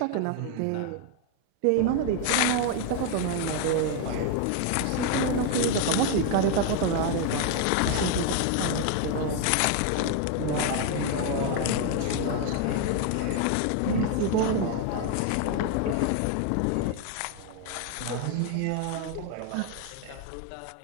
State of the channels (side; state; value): both; different; correlation 0.01